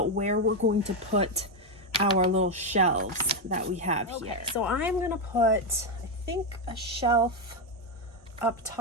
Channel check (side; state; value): both; normal; correlation 0.06